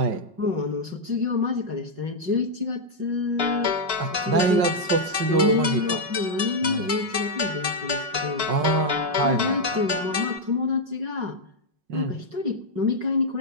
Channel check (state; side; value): late; left; 5.4 ms